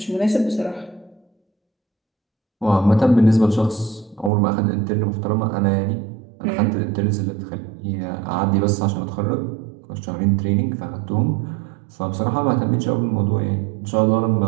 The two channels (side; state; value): left; drops out; at 4.3 s